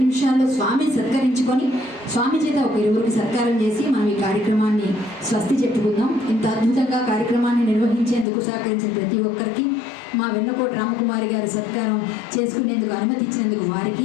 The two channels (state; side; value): drops out; right; at 8.2 s